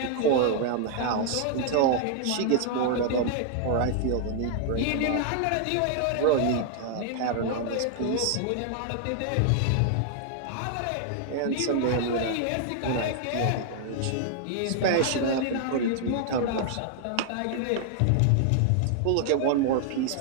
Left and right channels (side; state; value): both; different; correlation 0.00